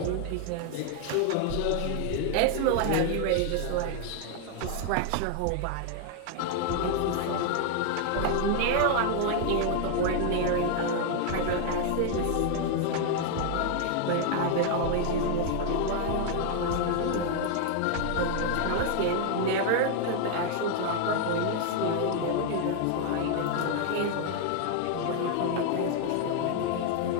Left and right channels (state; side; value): different; both; correlation 0.00